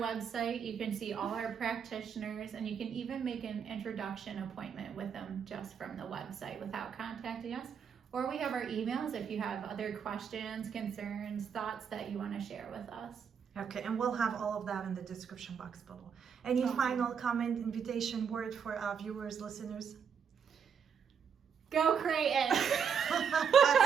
you can see all our practitioners, and you can even make an introduction appointment with them just from the website without contacting us. Or we have our emails if you have other questions, concerns, thoughts that you want to share with us. Okay, and we'll have all of that in the description box below. Any final comment, invitation, word for our viewers, listeners? Go Creighton! That's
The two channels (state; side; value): quieter; left; 7.1 dB